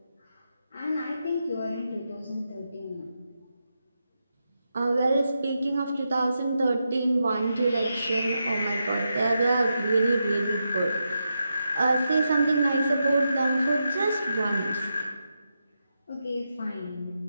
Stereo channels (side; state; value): both; inverted; correlation -0.86